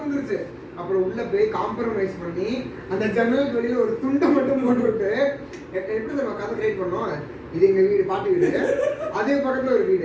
அப்புறம் உள்ள போய் காம்ப்ரமைஸ் பண்ணி அந்த ஜன்னலுக்கு வெளியில ஒரு துண்டை மட்டும் போட்டு விட்டு எப்படி நம்ம கதை கிரியேட் பண்ணோம் இது எங்க வீடு பாட்டி வீடு அதே பக்கத்துல ஒரு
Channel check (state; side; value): identical; both; correlation 1.00